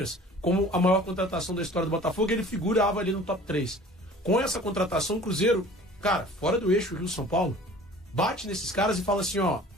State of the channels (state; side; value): normal; both; correlation 0.46